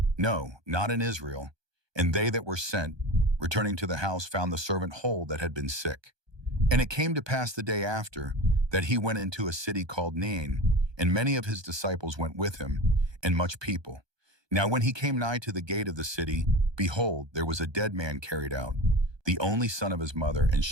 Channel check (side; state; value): left; late; 1.2 ms